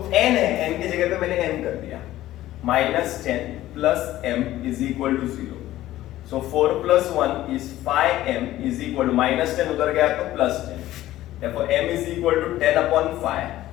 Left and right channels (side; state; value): right; quieter; 14.8 dB